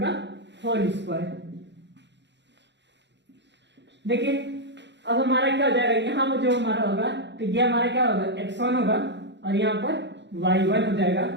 का होल स्क्वायर। देखिए अब हमारा क्या हो जाएगा, यहाँ पर जो हमारा होगा तो ये हमारा क्या होगा x1 होगा और यहाँ पर y1 हो जाएगा।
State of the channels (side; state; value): left; late; 0.52 ms